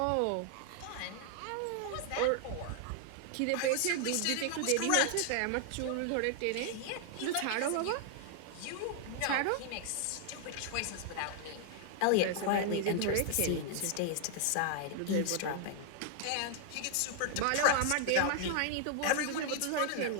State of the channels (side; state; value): both; different; correlation 0.00